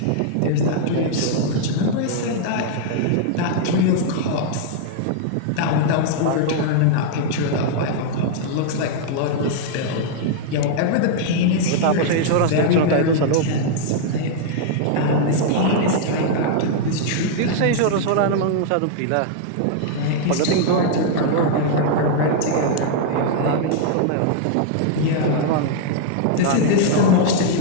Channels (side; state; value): both; different; correlation -0.01